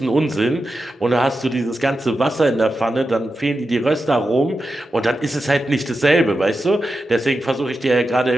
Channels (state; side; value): normal; both; correlation 0.90